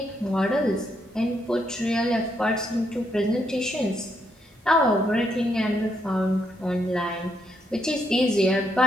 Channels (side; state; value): both; normal; correlation 0.77